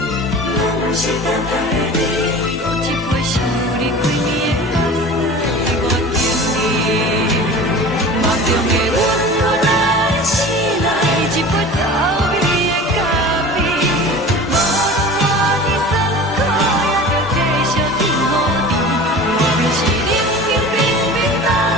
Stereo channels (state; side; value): normal; both; correlation 0.38